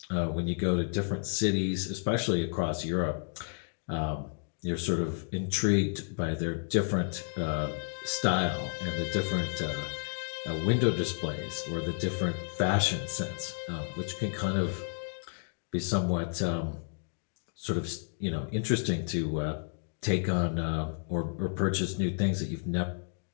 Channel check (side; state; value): right; silent; digital silence